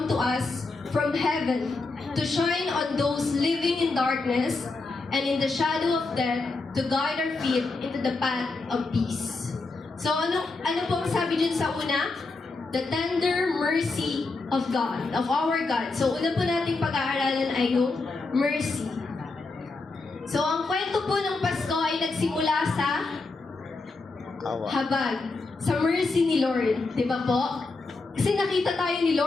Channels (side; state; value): right; quieter; 3.6 dB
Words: to us from heaven, to shine on those living in darkness and in the shadow of death, to guide our feet into the path of peace. So ano po ang sabi dyan sa una? The tender mercy of God, of our God. So una po nating pag-aaralan ay yung mercy. So ang kwento po ng Pasko ay nagsimula sa habag, sa mercy ni Lord. Di ba po? Kasi nakita tayo ni